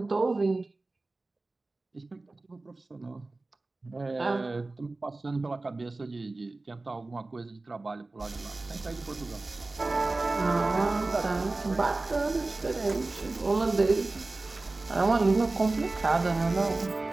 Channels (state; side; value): quieter; left; 3.2 dB